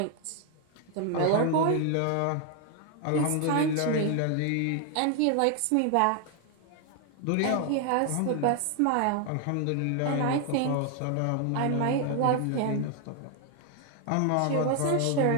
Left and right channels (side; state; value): both; different; correlation 0.00